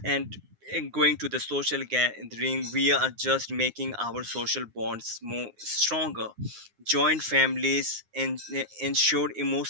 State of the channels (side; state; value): left; late; 9.6 ms